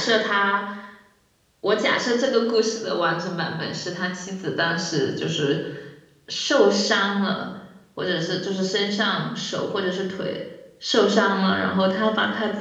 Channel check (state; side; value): identical; both; correlation 1.00